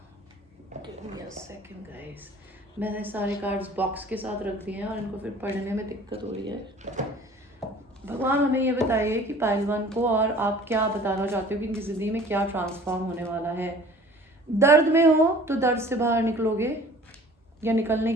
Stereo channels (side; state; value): both; normal; correlation 0.48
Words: सेकंड गाइस, मैंने सारे कार्ड्स बॉक्स के साथ रख दिए हैं और इनको फिर पढ़ने में दिक्कत हो रही है. भगवान हमें ये बताइए कि पहलवान को और आप क्या बताना चाहते हो कि इनकी ज़िंदगी में क्या ट्रांसफॉर्म होने वाला है. दर्द में हो तो दर्द से बाहर निकलोगे, या निकलने